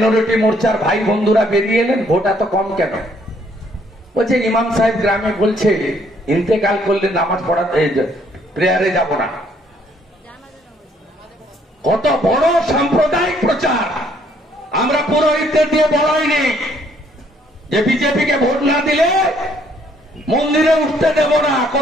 মোর্চার ভাই বন্ধুরা বেরিয়ে এলেন, ভোট এত কম কেন? বলছে ইমাম সাহেব গ্রামে বলছে ইন্তেকাল করলে নামাজ পড়াতে প্রেয়ারে যাব না। কত বড় সাম্প্রদায়িক প্রচার। আমরা পুরোহিতদের দিয়ে বলাইনি যে বিজেপিকে ভোট না দিলে মন্দিরে উঠতে দেব না,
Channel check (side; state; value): both; normal; correlation 0.66